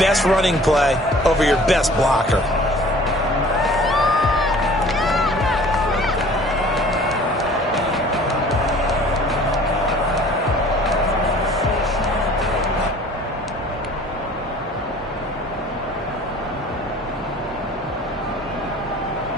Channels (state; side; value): noise; right; hum, 20 dB below the sound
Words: running play over your best blocker.